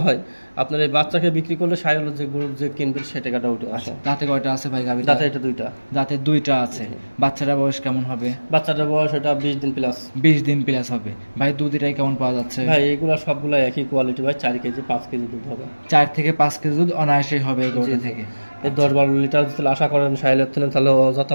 হয়, আপনার এই বাচ্চাকে বিক্রি করলে শাহিওয়াল যে গরু যে কিনবে সে টাকাটা উঠে আসে। দাঁতে কয়টা আছে ভাই গাভীটা? দাঁতে এটা 2টা। দাঁতে 2টা আছে। বাচ্চাটার বয়স কেমন হবে? বাচ্চাটার বয়স এটা 20 দিন প্লাস। 20 দিন প্লাস হবে। ভাই দুধ এটাই কেমন পাওয়া যাচ্ছে? ভাই এগুলা সবগুলা একই কোয়ালিটি ভাই, 4 কেজি 5 কেজি দুধ হবে। 4 থেকে 5 কেজি দুধ অনায়াসেই হবে এই গরুটা থেকে। এই 10-12 লিটার যদি আশা করেন শাহিওয়ালের থেকে, তাহলে অযথা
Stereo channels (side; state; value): both; inverted; correlation -1.00